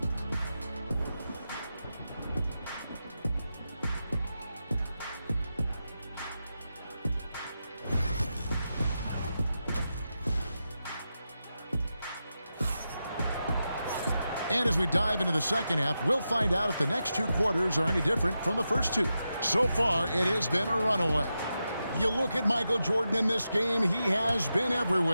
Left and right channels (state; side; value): inverted; both; correlation -0.89